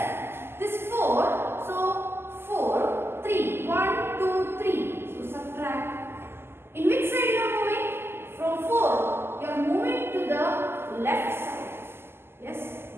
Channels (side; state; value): left; late; 0.12 ms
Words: this 4, so 4, 3, 1, 2, 3. So subtract. In which side you are moving? From 4, you are moving to the left side. Yes,